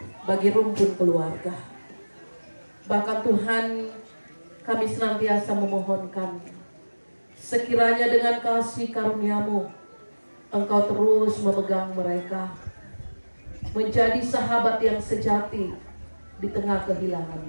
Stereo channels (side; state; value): both; inverted; correlation -1.00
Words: bagi rumpun keluarga. Bahkan Tuhan, kami senantiasa memohonkan, sekiranya dengan kasih karunia-Mu, Engkau terus memegang mereka, menjadi sahabat yang sejati di tengah kehilangan